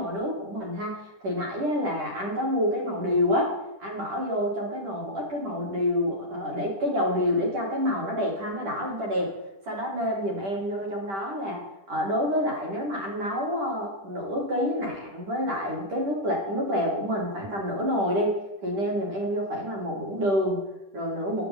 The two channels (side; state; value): left; late; 10 ms